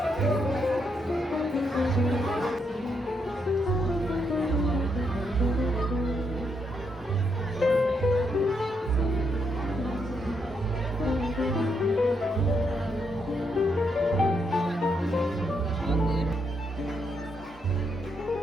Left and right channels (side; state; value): both; normal; correlation 0.78